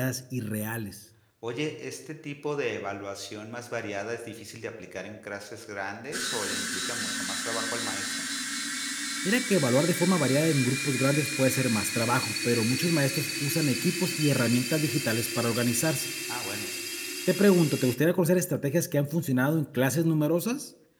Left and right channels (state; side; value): identical; both; correlation 1.00